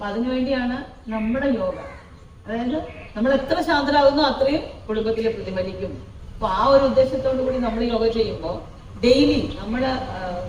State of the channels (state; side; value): identical; both; correlation 1.00